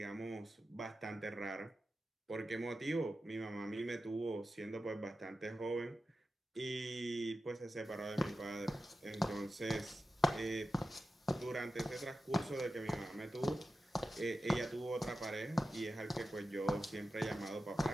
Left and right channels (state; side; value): normal; both; correlation 0.92